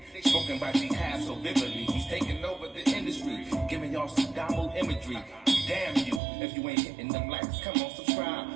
Spoken by jihad so vividly. He's taking over the industry, giving y'all some Damu imagery. Damn you, if you ain't hitting them likes, come on,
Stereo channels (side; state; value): left; drops out; at 6.2 s